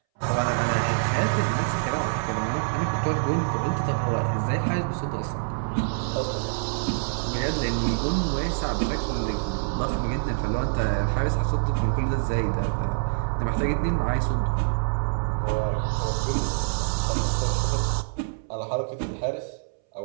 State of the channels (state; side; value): silent; left; 61 dB below the other